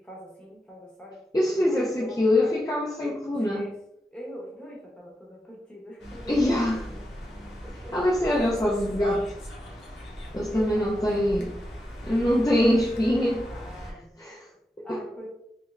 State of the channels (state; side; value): normal; both; correlation 0.87